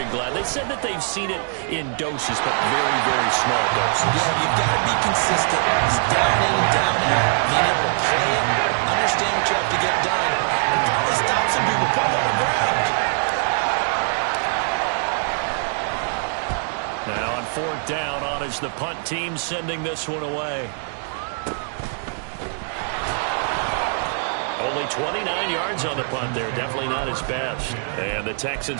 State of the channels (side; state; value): left; silent; digital silence